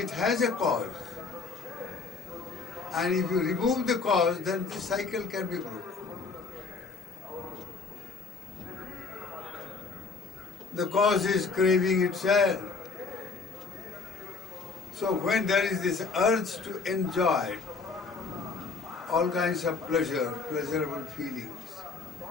has a cause. And if you remove the cause, then the cycle can be broken. The cause is craving itself. So when there is this urge to enjoy all kinds of pleasurable feelings,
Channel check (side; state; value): right; quieter; 4.6 dB